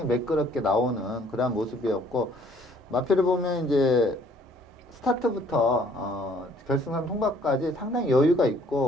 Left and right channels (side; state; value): both; normal; correlation 0.60